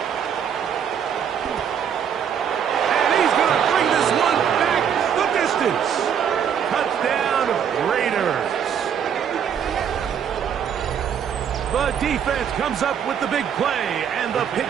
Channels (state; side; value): quieter; left; 8.2 dB